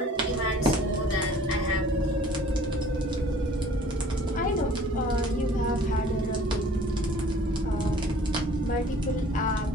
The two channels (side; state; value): both; normal; correlation 0.52